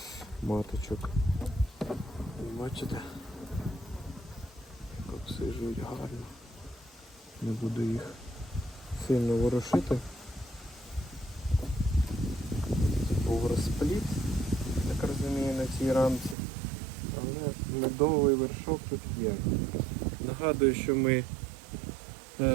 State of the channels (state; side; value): drops out; left; at 16.4 s